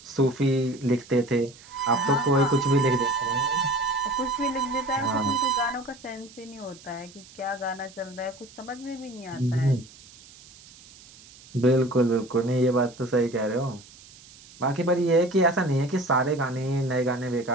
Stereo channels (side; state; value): right; noise; hiss, 22 dB below the sound